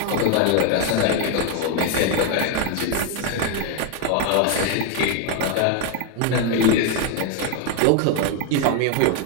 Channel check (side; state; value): both; different; correlation 0.01